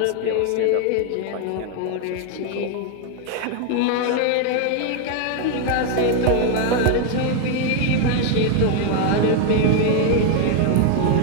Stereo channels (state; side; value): different; both; correlation 0.01